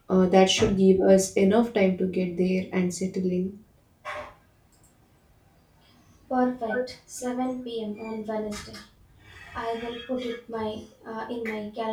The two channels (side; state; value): both; identical; correlation 1.00